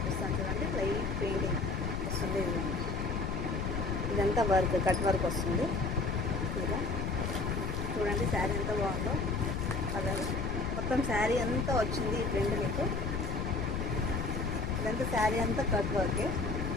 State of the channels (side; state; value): left; noise; rumble, 2 dB below the sound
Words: చూడండి. లైట్ పెయింటింగ్ వస్తుంది. ఇదంతా వర్క్, కట్ వర్క్ వస్తుంది. ఇలా చూడండి శారీ ఎంత బాగుందో. కలర్ మొత్తం శారీ అంతా వచ్చింది. ఈ ప్రింట్ మీకు ఇదంతా శారీ అంతా కట్ వర్కే.